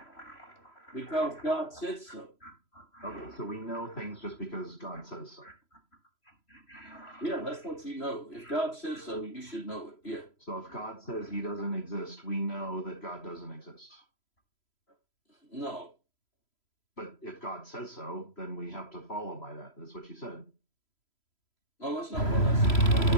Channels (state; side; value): late; right; 3.0 ms